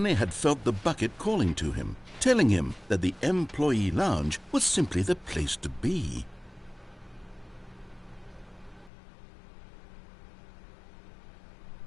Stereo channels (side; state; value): right; drops out; at 8.9 s